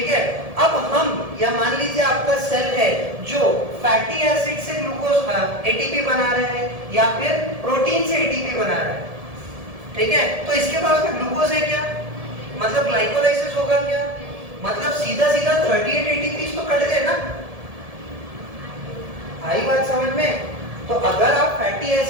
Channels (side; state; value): left; late; 1.7 ms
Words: है। अब हम या मान लीजिए आपका सेल है जो फैटी एसिड से ग्लूकोज एटीपी बना रहे हैं या फिर प्रोटीन से एटीपी बना रहा है, ठीक है। तो इसके पास में ग्लूकोज है क्या, मतलब ग्लाइकोलाइसिस होगा क्या, मतलब सीधा सीधा 38 एटीपी तो कट गए ना, आई बात समझ में। तो अगर आप फैटी